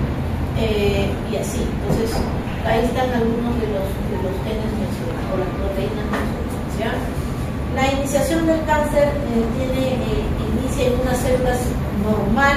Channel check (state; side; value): identical; both; correlation 1.00